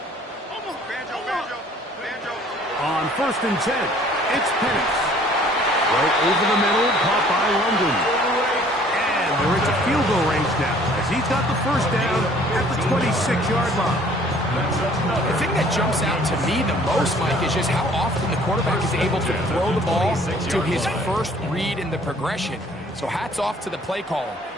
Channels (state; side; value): normal; both; correlation 0.56